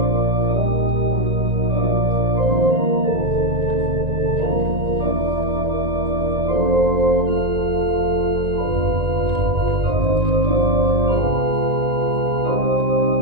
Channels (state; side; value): late; left; 1.9 ms